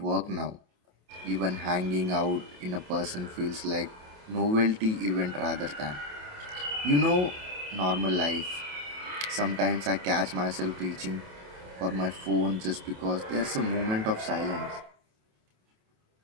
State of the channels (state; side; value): late; left; 28 ms